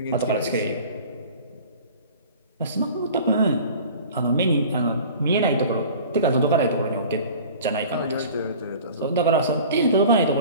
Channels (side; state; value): both; inverted; correlation -0.43